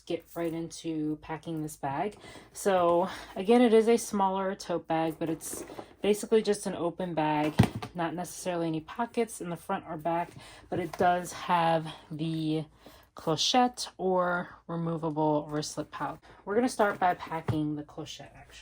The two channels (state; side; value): identical; both; correlation 1.00